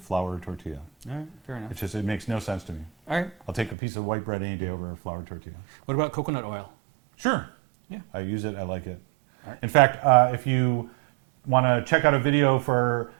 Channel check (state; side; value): drops out; left; at 3.8 s